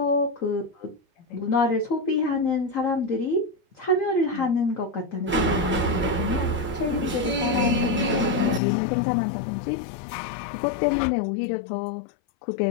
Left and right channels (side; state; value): right; drops out; at 8.6 s